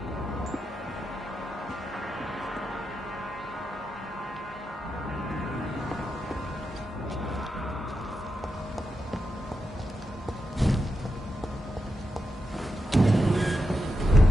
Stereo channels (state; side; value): normal; both; correlation 0.87